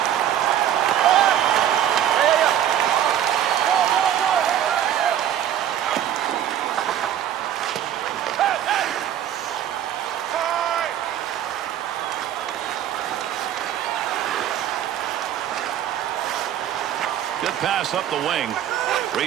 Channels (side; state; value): left; quieter; 10.7 dB